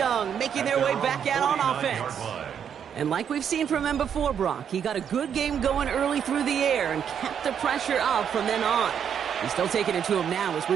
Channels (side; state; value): left; quieter; 8.2 dB